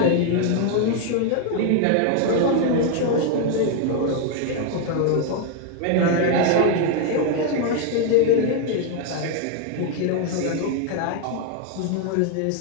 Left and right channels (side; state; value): both; different; correlation 0.01